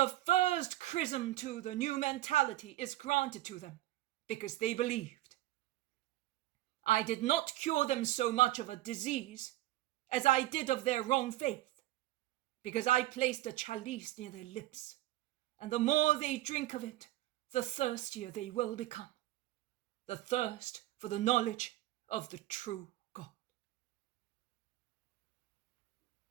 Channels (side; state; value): left; quieter; 16.0 dB